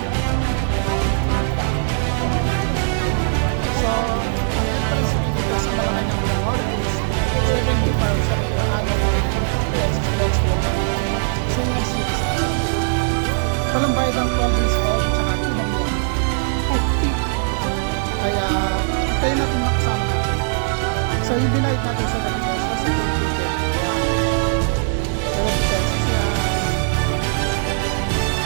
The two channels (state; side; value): silent; left; digital silence